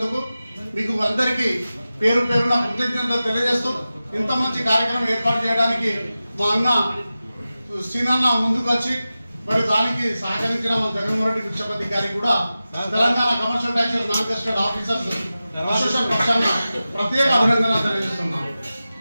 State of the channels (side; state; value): both; inverted; correlation -0.94